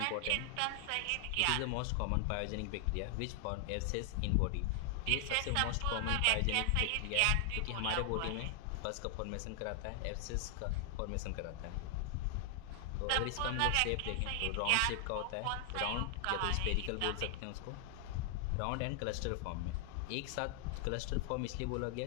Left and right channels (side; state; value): both; different; correlation 0.00